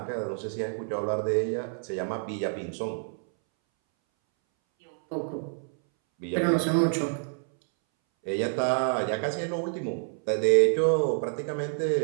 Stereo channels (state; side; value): silent; left; 60 dB below the other